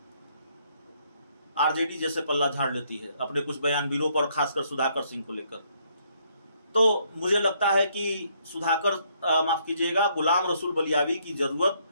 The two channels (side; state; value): both; inverted; correlation -0.69